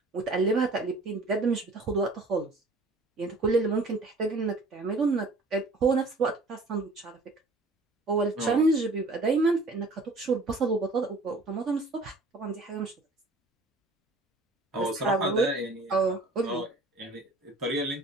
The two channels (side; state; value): left; quieter; 3.0 dB